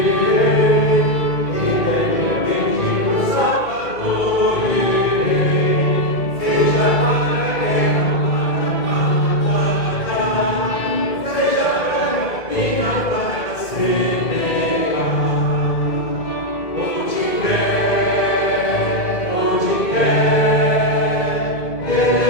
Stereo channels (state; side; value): late; right; 2.1 ms